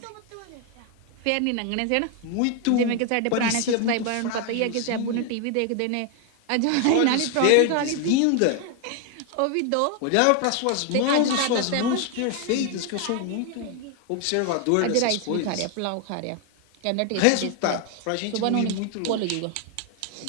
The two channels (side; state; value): both; different; correlation 0.01